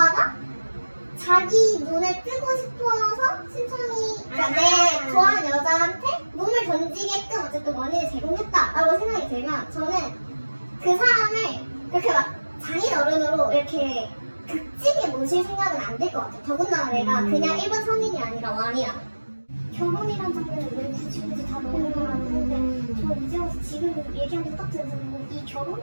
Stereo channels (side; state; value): both; inverted; correlation -1.00